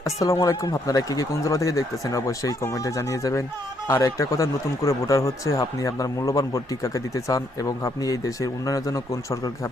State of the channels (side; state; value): both; normal; correlation 0.72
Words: আসসালামু আলাইকুম। আপনারা কি কোন জেলা থেকে দেখতেছেন অবশ্যই কমেন্টে জানিয়ে যাবেন। আর একটা কথা, নতুন করে ভোটার হচ্ছে, আপনি আপনার মূল্যবান ভোটটি কাকে দিতে চান এবং আপনি এই দেশের উন্নয়নের জন্য কোন সরকারকে